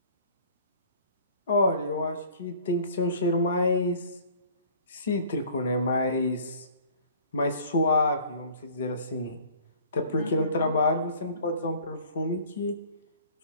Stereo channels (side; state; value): both; inverted; correlation -0.50